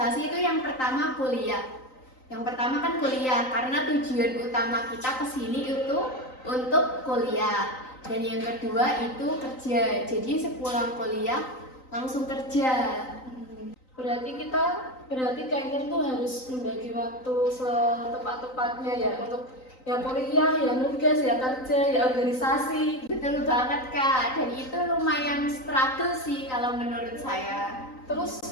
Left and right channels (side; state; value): right; late; 3.9 ms